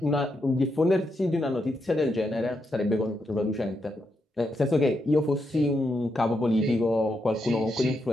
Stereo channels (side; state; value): both; normal; correlation 0.82